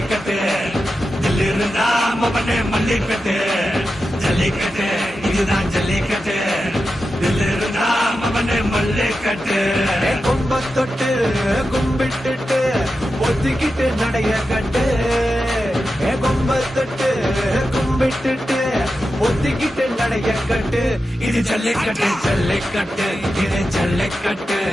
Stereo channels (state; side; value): normal; both; correlation 0.91